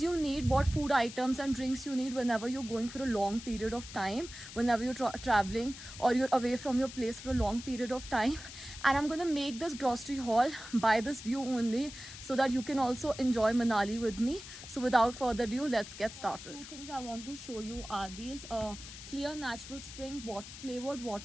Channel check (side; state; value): left; noise; hiss, 13 dB below the sound